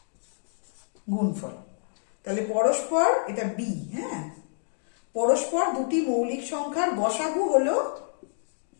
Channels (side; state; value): right; silent; digital silence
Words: গুণফল। তাহলে পরস্পর, এটা বি, হ্যাঁ, পরস্পর দুটি মৌলিক সংখ্যার গসাগু হলো